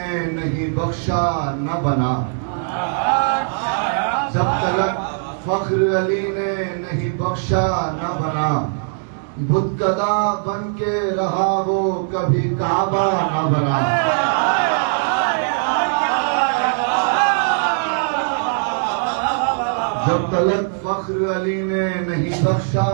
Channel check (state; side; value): silent; left; digital silence